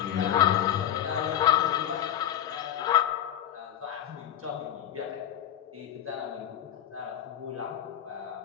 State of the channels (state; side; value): quieter; right; 10.6 dB